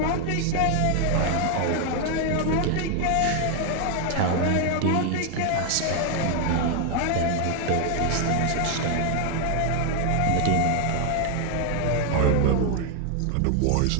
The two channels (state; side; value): different; both; correlation 0.00